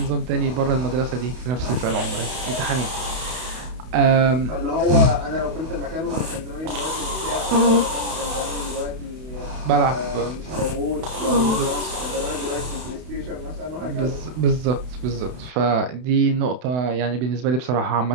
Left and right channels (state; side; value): late; left; 32 ms